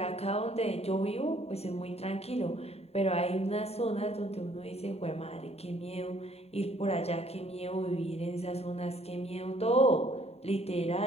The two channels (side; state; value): right; late; 0.30 ms